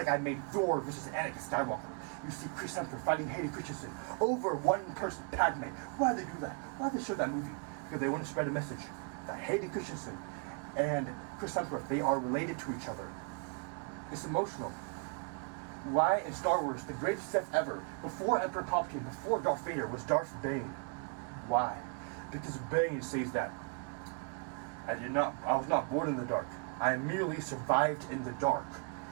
I made Thor versus Anakin Skywalker. You see Chris Hemsworth fighting Hayden Christensen over one person, Padme. Why did they do that? Why did they show that movie? Because they want to spread a message that Hayden Christensen and Chris Hemsworth, they are related to each other. It's emotional. Why in Star Wars, the greatest Sith ever, before Emperor Palpatine, before Darth Vader, was Darth Bane? Why? Because Bane says that I was not born in the dark. I merely survived in the dark,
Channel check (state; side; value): quieter; left; 39.3 dB